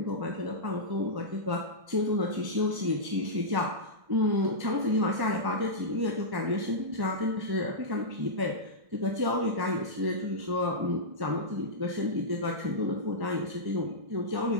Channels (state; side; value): late; left; 1.1 ms